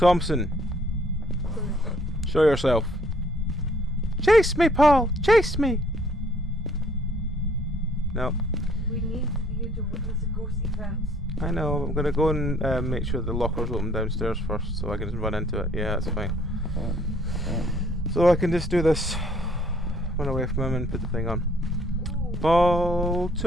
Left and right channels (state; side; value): normal; both; correlation 0.62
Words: show yourself. Chase me, Paul! Chase me! No. We need you to witness a ghost event. I know, I'm gonna go and make sure the locker's open downstairs first so I can just run into it. Yeah, that's fine. So I can just do this. Run away from him and put the thing on. Ooh. Paul